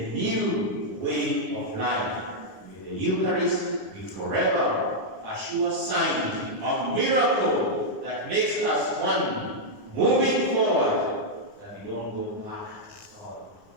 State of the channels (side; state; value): left; late; 9.9 ms